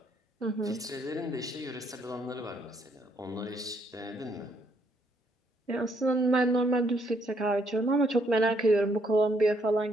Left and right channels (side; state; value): both; normal; correlation 0.71